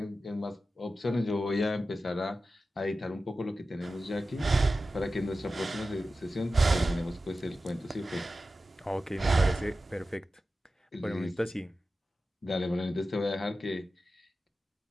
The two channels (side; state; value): both; normal; correlation 0.93